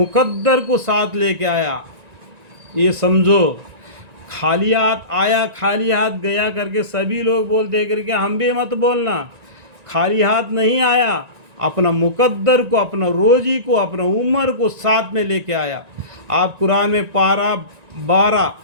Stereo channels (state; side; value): late; left; 1.9 ms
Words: کو ساتھ لے کے آیا. یہ سمجھو، خالی ہاتھ آیا خالی ہاتھ گیا کر کے سبھی لوگ بولتے کر کے ہم بھی مت بولنا. خالی ہاتھ نہیں آیا، اپنا مقدر کو، اپنا روزی کو، اپنا عمر کو ساتھ میں لے کے آیا. آپ قرآن میں پارہ 12